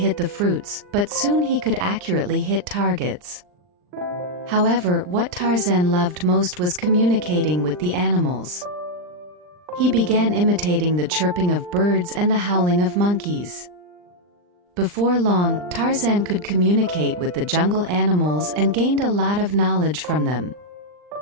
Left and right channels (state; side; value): late; left; 39 ms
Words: the fruits, but soon he could accurately hit targets. However, what Tarzan loved most was communicating with the animals. He began imitating the chirping of birds and the howling of monkeys. Before long, Tarzan could communicate with the jungle animals and gained a lot of knowledge from them.